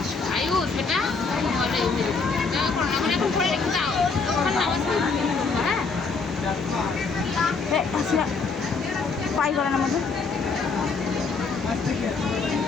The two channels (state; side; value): quieter; right; 4.5 dB